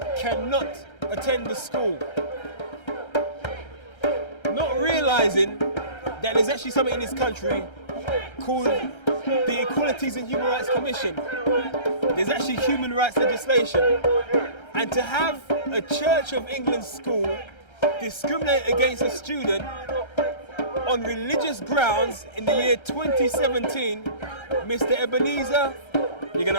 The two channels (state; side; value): late; right; 1.3 ms